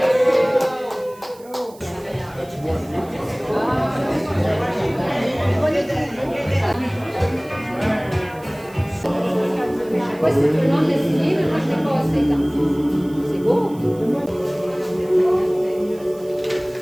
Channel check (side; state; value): right; noise; hiss, 25 dB below the sound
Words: Ouais, c'est tout le monde l'essayer, mais moi je l'ai pas assez dans. C'est beau!